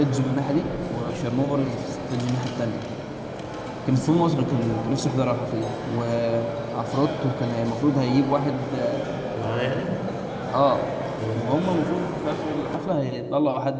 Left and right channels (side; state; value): both; identical; correlation 1.00